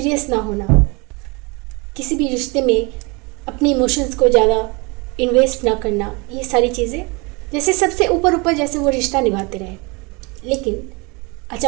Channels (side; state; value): left; quieter; 28.2 dB